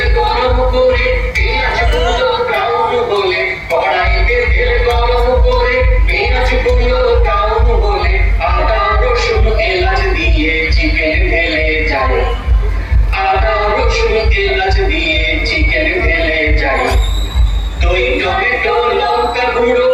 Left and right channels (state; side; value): identical; both; correlation 1.00